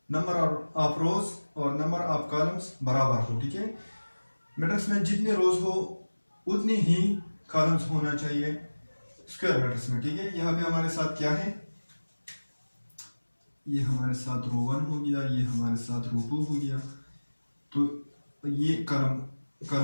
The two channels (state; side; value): inverted; both; correlation -1.00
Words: नंबर ऑफ रोज और नंबर ऑफ कॉलम्स बराबर हो, ठीक है। मैट्रिक्स में जितने रोज हो उतनी ही कॉलम्स होना चाहिए स्क्वायर मैट्रिक्स में, ठीक है। यहाँ पे हमारे साथ क्या है, ये हमारे साथ रो 1 हो गया, ये हमारे साथ रो 2 हो गया, तो ये कॉलम